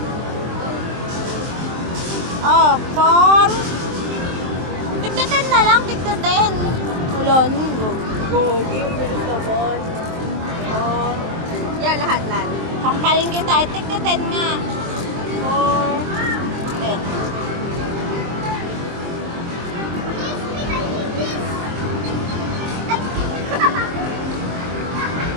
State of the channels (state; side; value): late; left; 23 ms